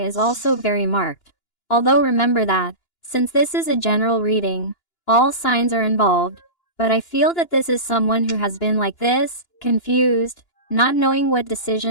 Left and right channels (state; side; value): late; right; 2.9 ms